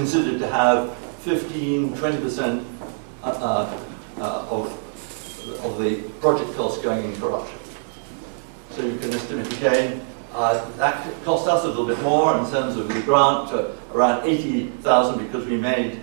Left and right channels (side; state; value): left; silent; digital silence